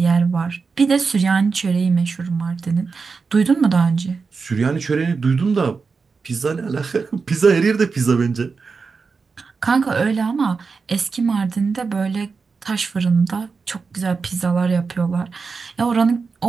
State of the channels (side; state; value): left; quieter; 4.8 dB